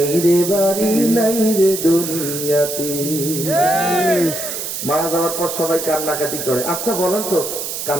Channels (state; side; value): noise; right; hiss, 5 dB below the sound